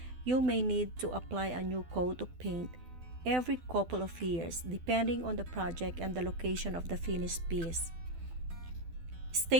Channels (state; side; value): late; left; 12 ms